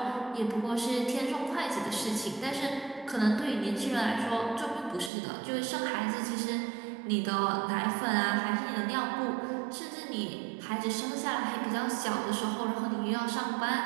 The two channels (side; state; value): left; drops out; at 5.1 s